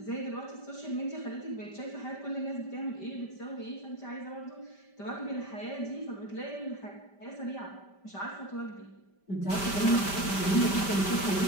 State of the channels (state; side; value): late; right; 5.1 ms